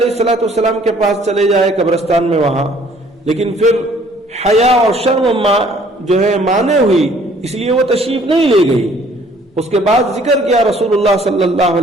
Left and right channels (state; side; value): normal; both; correlation 0.58